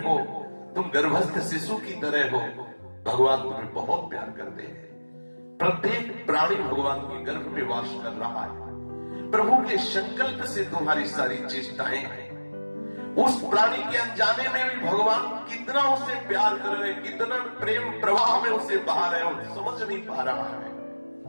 हो तुम गर्भस्थ शिशु की तरह हो, भगवान तुम्हें बहुत प्यार करते हैं। प्रत्येक प्राणी भगवान के गर्भ में वास कर रहा है। प्रभु के संकल्प से तुम्हारी सारी चेष्टाएं हैं। उस प्राणी के अनजाने में भी भगवान कितना उसे प्यार कर रहे, कितना प्रेम प्रवाह में उसे बहा रहे हो, समझ नहीं पा रहा है।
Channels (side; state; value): both; inverted; correlation -1.00